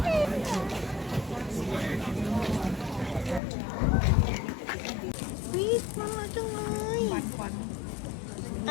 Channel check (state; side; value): drops out; right; at 3.4 s